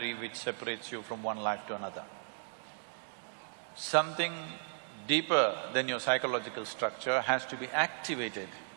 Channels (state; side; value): silent; left; digital silence